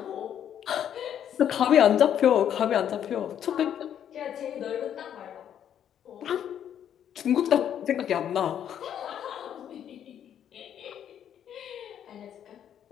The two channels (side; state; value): right; quieter; 9.6 dB